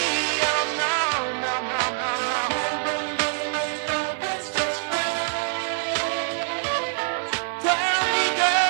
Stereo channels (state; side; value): silent; left; 61 dB below the other